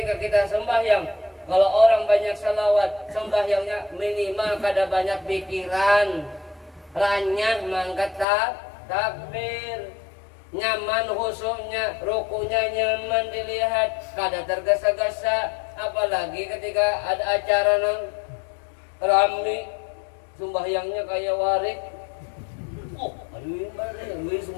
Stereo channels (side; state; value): right; drops out; at 8.2 s